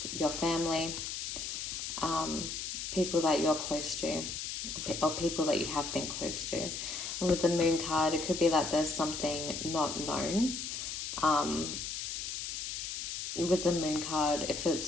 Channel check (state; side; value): noise; left; hiss, 4 dB below the sound